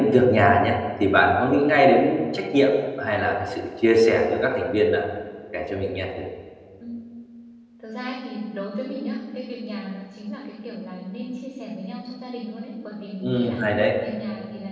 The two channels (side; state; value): both; identical; correlation 1.00